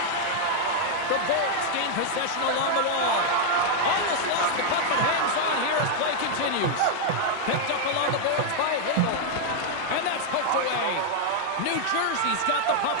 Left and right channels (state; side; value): different; both; correlation 0.00